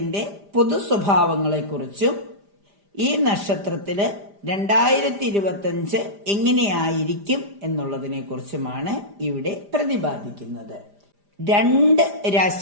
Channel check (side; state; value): left; late; 5.0 ms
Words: പൊതു സ്വഭാവങ്ങളെക്കുറിച്ചും ഈ നക്ഷത്രത്തില് 2025 എങ്ങനെയായിരിക്കും എന്നുള്ളതിനെ കുറിച്ചുമാണ് ഇവിടെ പ്രതിപാദിക്കുന്നത്. 2